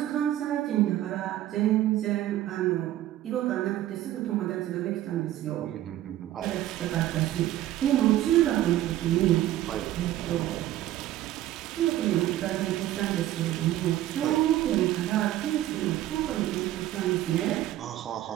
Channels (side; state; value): left; quieter; 13.7 dB